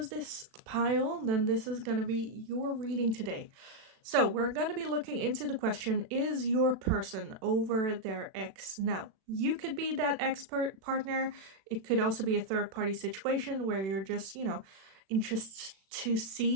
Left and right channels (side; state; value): left; late; 36 ms